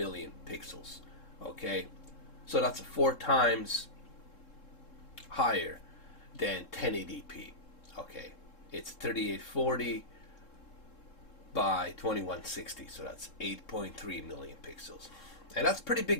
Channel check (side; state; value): right; late; 3.7 ms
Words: pixels. Okay, so that's 4 times higher than 1080p. Okay, it's 3840 by 2160, so that's 8.3 million pixels, and that's a pretty